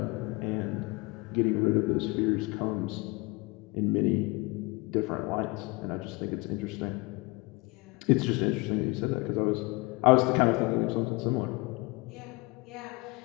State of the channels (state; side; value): quieter; right; 25.9 dB